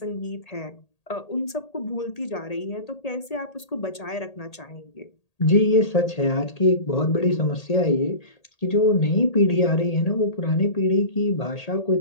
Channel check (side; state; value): right; late; 1.8 ms